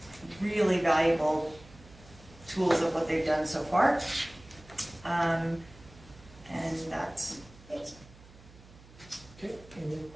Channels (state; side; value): noise; right; hum, 22 dB below the sound